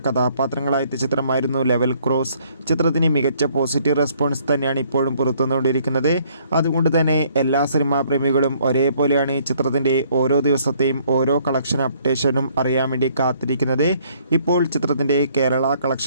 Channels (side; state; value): both; inverted; correlation -0.63